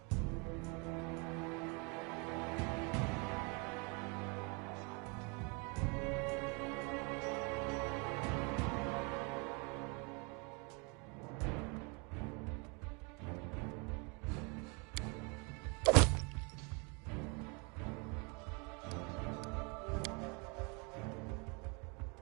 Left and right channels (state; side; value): quieter; left; 31.8 dB